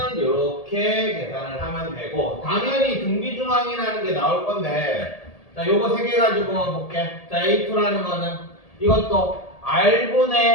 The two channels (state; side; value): late; right; 1.8 ms